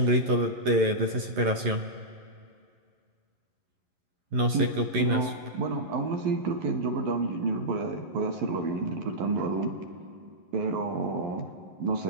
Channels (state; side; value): late; left; 11 ms